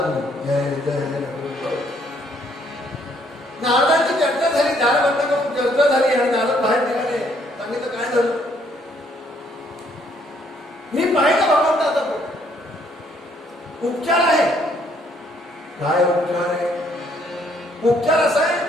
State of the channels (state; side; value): normal; both; correlation 0.67